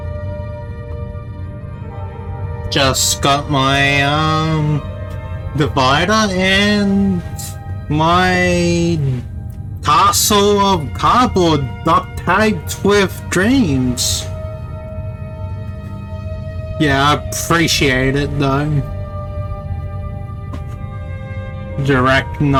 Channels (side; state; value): both; identical; correlation 1.00